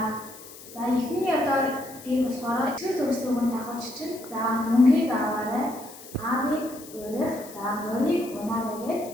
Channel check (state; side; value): noise; left; hiss, 17 dB below the sound